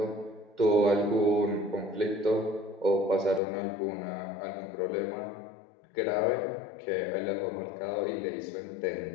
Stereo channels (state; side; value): drops out; right; at 3.4 s